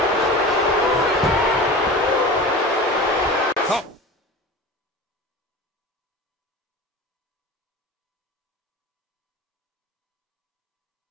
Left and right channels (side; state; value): both; normal; correlation 0.34